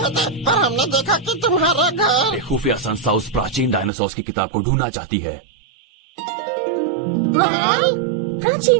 थे, पर हमने देखा कि तुम्हारा घर। एक खुफिया संस्था उस प्राचीन डायनासोर की किताब को ढूंढना चाहती है।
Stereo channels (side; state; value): left; drops out; at 3.9 s